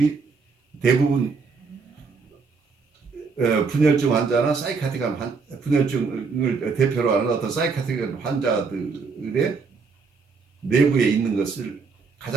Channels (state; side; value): quieter; left; 4.9 dB